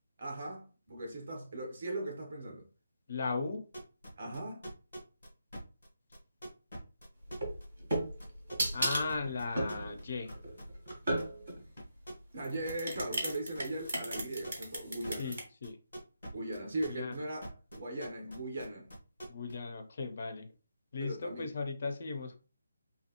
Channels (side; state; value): both; inverted; correlation -0.81